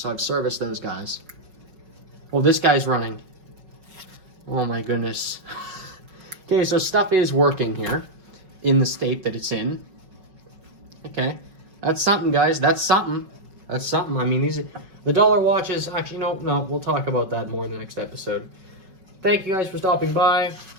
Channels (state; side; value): late; left; 5.4 ms